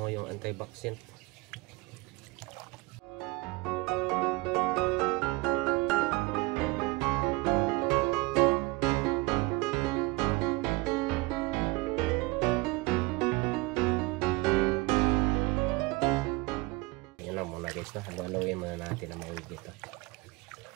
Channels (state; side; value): quieter; left; 23.9 dB